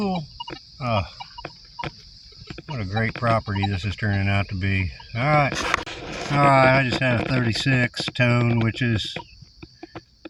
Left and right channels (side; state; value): both; identical; correlation 1.00